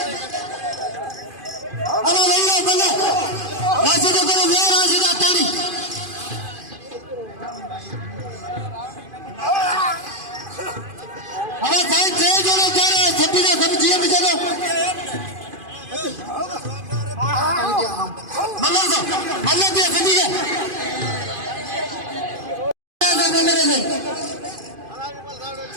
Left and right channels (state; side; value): late; left; 2.5 ms